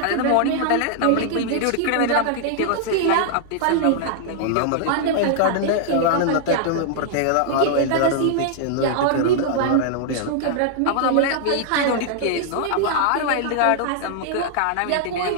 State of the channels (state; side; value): different; both; correlation -0.01